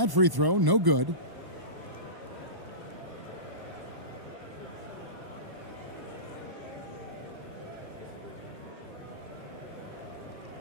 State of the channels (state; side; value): late; left; 1.1 ms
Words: free throw, no good.